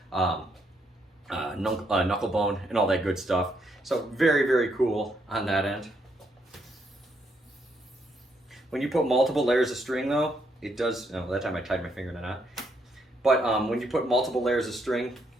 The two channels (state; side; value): normal; both; correlation 0.75